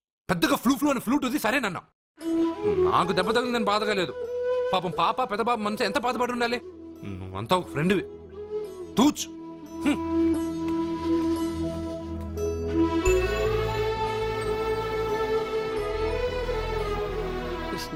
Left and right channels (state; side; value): identical; both; correlation 1.00